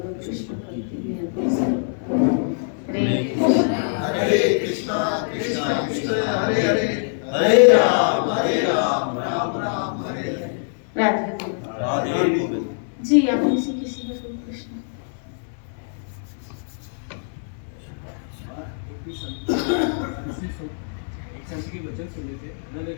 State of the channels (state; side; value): silent; right; 63 dB below the other